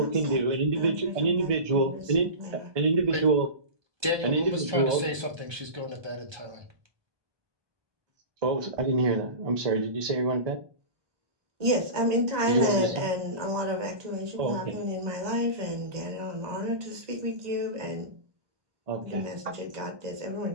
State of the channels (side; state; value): left; late; 1.2 ms